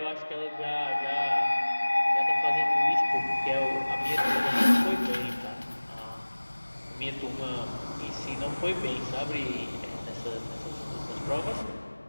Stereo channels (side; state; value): both; inverted; correlation -1.00